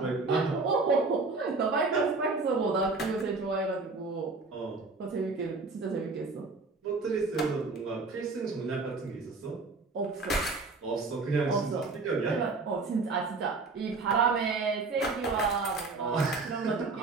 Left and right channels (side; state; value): left; quieter; 3.9 dB